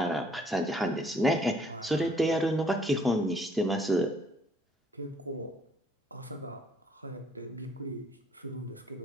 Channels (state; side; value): normal; both; correlation 0.64